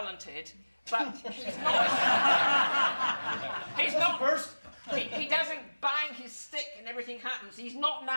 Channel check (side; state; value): both; inverted; correlation -1.00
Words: but he's not. He's not. First. He doesn't bang his stick and everything happens. He's not